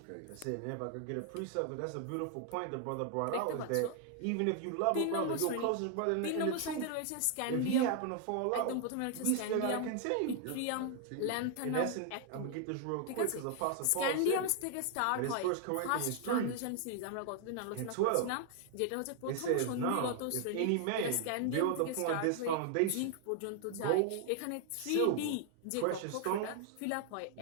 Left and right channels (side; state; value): both; different; correlation 0.00